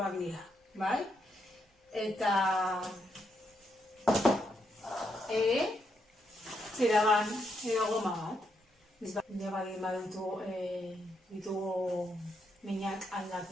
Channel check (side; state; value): both; normal; correlation 0.79